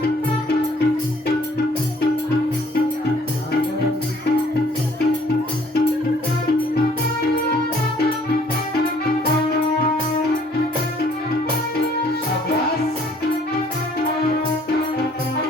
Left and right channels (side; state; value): both; normal; correlation 0.59